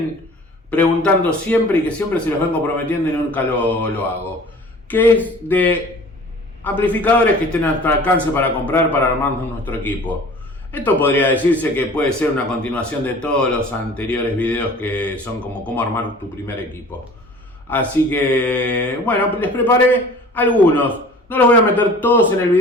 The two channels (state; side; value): normal; both; correlation 0.45